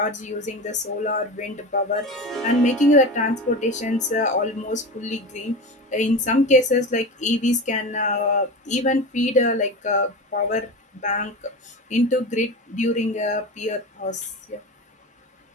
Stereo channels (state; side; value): normal; both; correlation 0.27